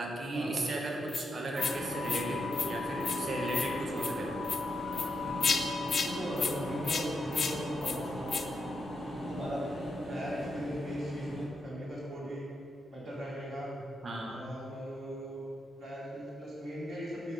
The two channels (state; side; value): normal; both; correlation 0.83